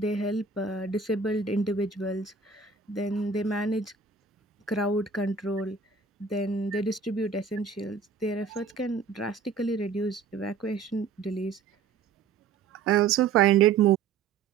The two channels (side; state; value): left; quieter; 5.4 dB